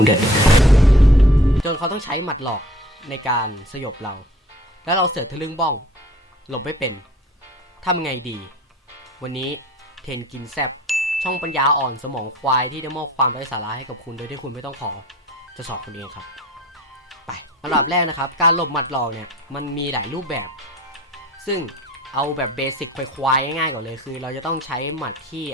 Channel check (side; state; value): both; normal; correlation 0.48